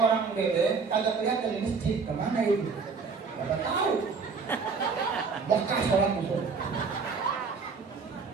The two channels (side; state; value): left; quieter; 5.0 dB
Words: beda kagak kelihatan di masjid, kemana itu? Kagak tahu. Mekah sholat itu.